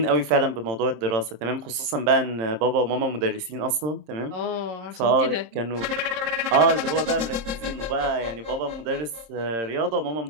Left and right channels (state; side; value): late; left; 26 ms